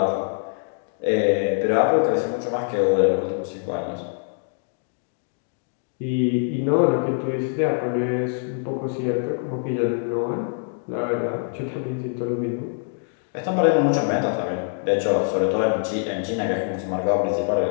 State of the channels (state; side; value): silent; right; 63 dB below the other